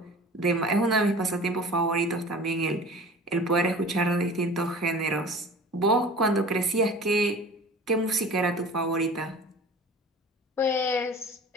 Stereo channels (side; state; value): both; normal; correlation 0.41